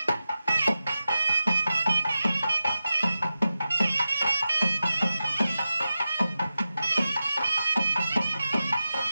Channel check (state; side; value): inverted; both; correlation -0.92